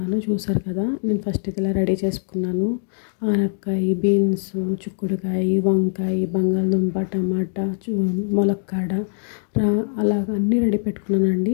చూసారు కదా, నేను ఫస్ట్ అయితే ఇలా రెడీ చేసుకున్నాను. ఆనపకాయ, బీన్స్, చిక్కుడుకాయ, వంకాయ, బంగాళదుంప, టమాటా, ములక్కాడ అలాగ అన్నీ రెడీ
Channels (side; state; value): right; silent; digital silence